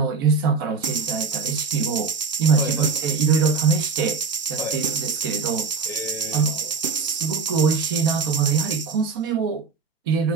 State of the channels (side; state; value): left; quieter; 5.0 dB